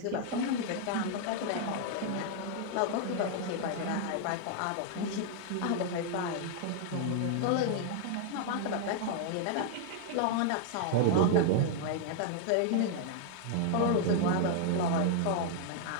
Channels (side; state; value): both; different; correlation 0.00